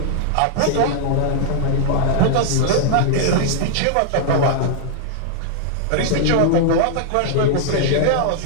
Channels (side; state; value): both; different; correlation -0.01